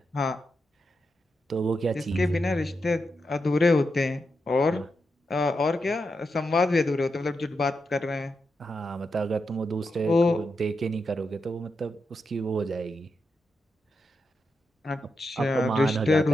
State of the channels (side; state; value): both; normal; correlation 0.86